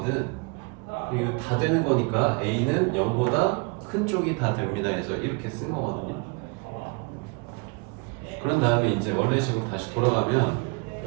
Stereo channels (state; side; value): quieter; left; 31.4 dB